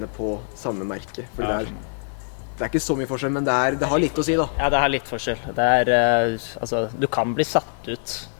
på samme merke. Fordi Ja, det er ikke så mye forskjell, men det har litt å si da. Ja, det har litt forskjell. Det er, altså, du kan bli satt ut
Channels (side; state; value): right; silent; 56 dB below the other